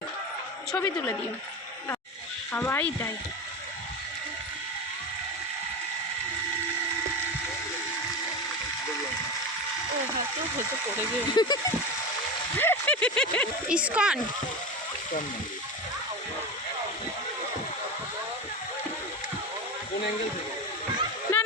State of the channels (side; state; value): both; normal; correlation 0.23